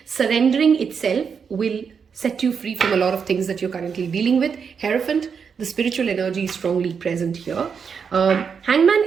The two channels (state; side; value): quieter; left; 6.4 dB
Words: Surrendering itself will set you free from a lot of things that you're currently dealing with. Hierophant, the spiritual energy is strongly present here. Hangman